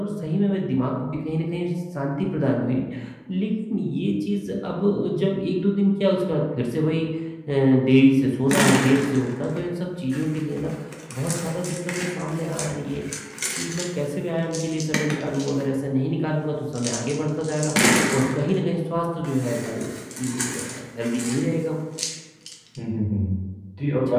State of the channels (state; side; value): identical; both; correlation 1.00